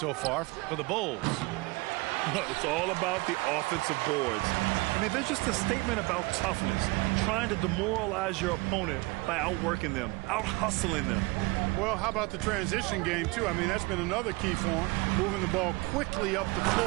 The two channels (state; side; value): quieter; left; 24.9 dB